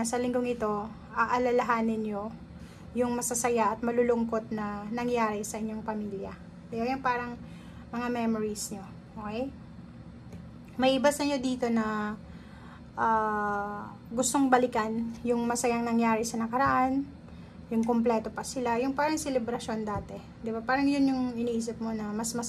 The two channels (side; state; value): both; identical; correlation 1.00